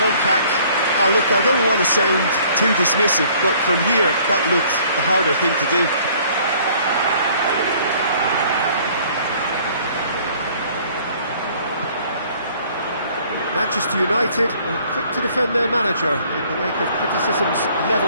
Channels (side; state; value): both; inverted; correlation -0.57